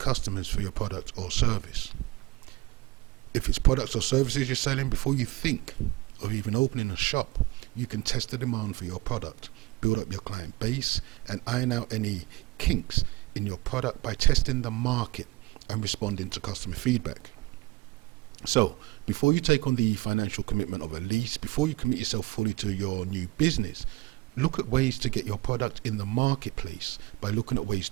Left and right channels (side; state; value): left; quieter; 21.3 dB